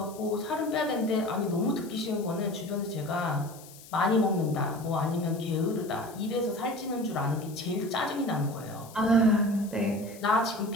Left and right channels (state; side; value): noise; left; hiss, 19 dB below the sound